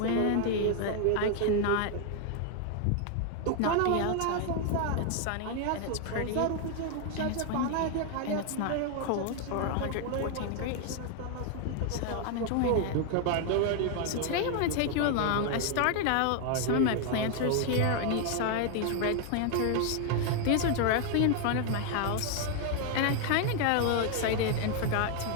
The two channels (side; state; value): both; different; correlation 0.01